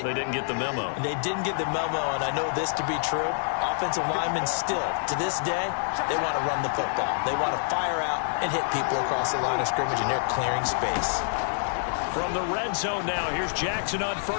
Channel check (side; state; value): right; silent; digital silence